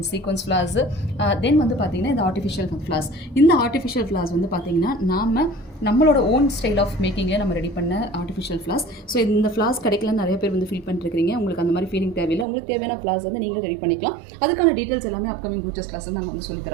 சீக்வன்ஸ் ஃபிளார்ஸ், தென் வந்து பாத்தீங்கன்னா இந்த ஆர்டிஃபிஷியல் ஃபிளார்ஸ். இந்த ஆர்டிஃபிஷியல் ஃபிளார்ஸ் வந்து பாத்தீங்கன்னா நம்மளோட ஓன் ஸ்டைல் ஆஃப் மேக்கிங்கில் நம்ம ரெடி பண்ண ஆர்டிஃபிஷியல் ஃப்ளார்ஸ். ஸோ இந்த ஃப்ளார்ஸ் கிடைக்கலன்னு நிறைய பேர் வந்து ஃபீல் பண்ணிருக்கீங்க. உங்களுக்கு அந்த மாதிரி ஃபீலிங் தேவையில்லை. உங்களுக்கு தேவையான ஃப்ளார்ஸ் வந்து நீங்களே ரெடி பண்ணிக்கலாம். அதுக்கான டீட்டெயில்ஸ் எல்லாமே அப்கமிங் ப்ரூச்சஸ் கிளாஸ் நாங்கள் வந்து சொல்லி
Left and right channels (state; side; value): drops out; left; at 12.5 s